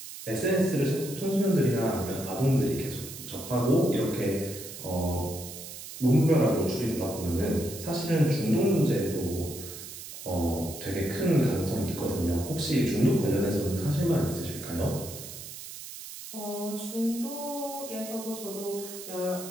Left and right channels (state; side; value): noise; right; hiss, 12 dB below the sound